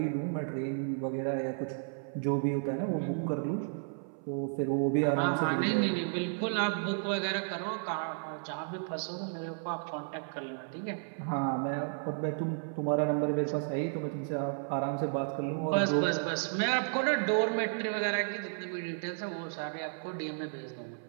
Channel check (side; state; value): left; silent; 56 dB below the other